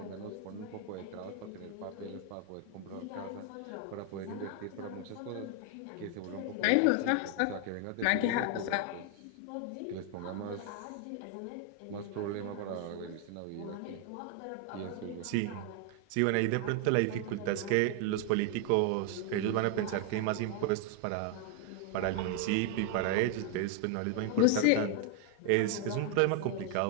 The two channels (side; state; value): both; different; correlation 0.01